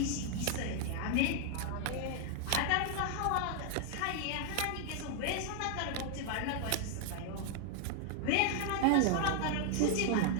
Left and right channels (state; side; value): different; both; correlation 0.00